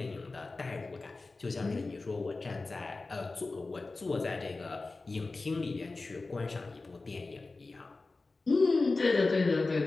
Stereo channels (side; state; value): right; quieter; 3.6 dB